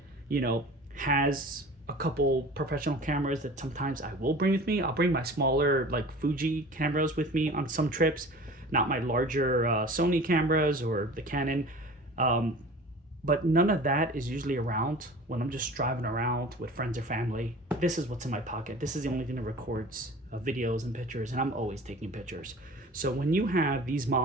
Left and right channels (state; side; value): normal; both; correlation 0.41